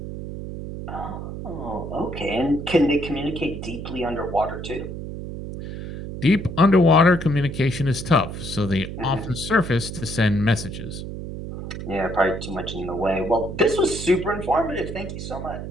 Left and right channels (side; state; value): right; noise; hum, 8 dB below the sound